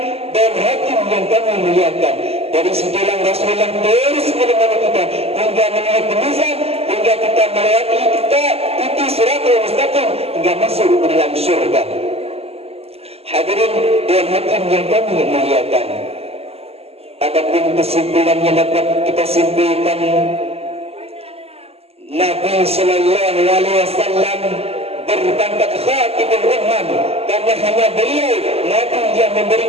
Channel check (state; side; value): late; left; 0.29 ms